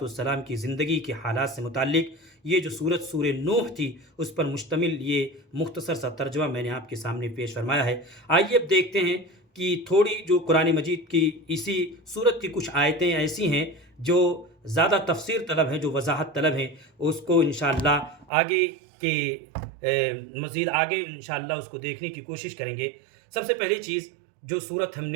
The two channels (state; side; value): drops out; left; at 18.2 s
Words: کی زندگی کے حالات سے متعلق یہ جو سورہ نوح تھی اس پر مشتمل یہ مختصر سا ترجمہ میں نے آپ کے سامنے پیش فرمایا ہے۔ آئیے اب دیکھتے ہیں کہ تھوڑی جو قرآن مجید کی اسی سورت کی کچھ آیتیں ایسی ہیں جو زیادہ تفسیر طلب ہیں، جو وضاحت طلب ہیں، اس کو انشاءاللہ مزید آگے انشاءاللہ اس کو دیکھنے کی کوشش کریں گے۔ سب سے پہلی چیز جو سورت